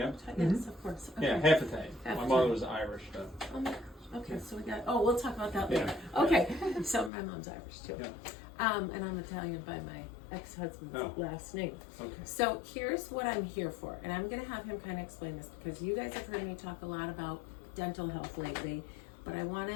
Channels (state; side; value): drops out; right; at 7.1 s